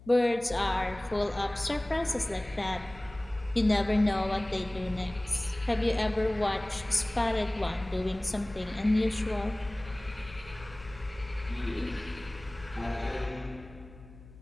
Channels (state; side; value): noise; left; hum, 20 dB below the sound